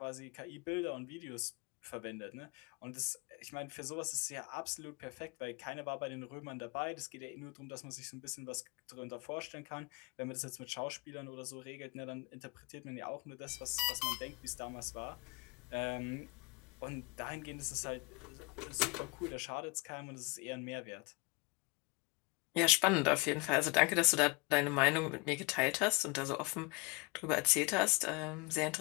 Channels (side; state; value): right; quieter; 27.5 dB